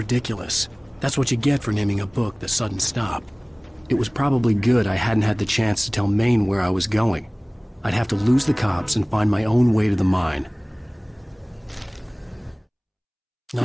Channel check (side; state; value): both; identical; correlation 1.00